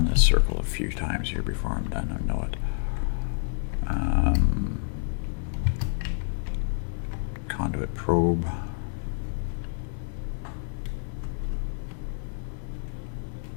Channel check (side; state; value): right; silent; digital silence